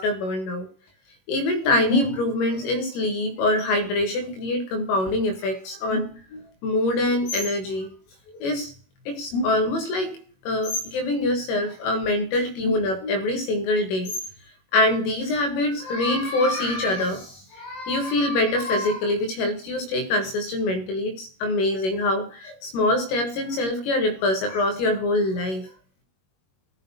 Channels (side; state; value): right; late; 21 ms